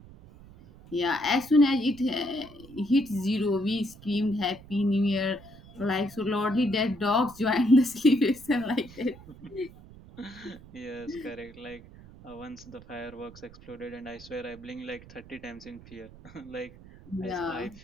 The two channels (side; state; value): right; noise; rumble, 20 dB below the sound